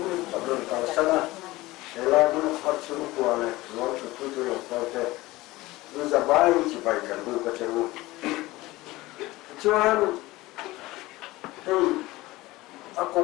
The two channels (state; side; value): quieter; right; 19.3 dB